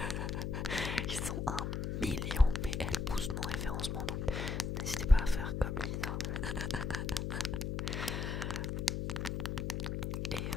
Ils sont 1 million, mais elle pousse mon référencement, donc n'hésitez pas à faire comme Lisa. Et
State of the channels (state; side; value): noise; left; hum, 1 dB below the sound